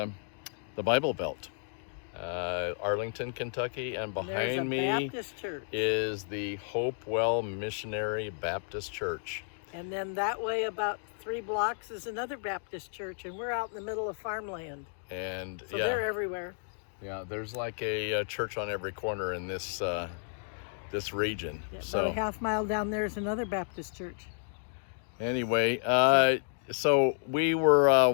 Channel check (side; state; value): right; silent; digital silence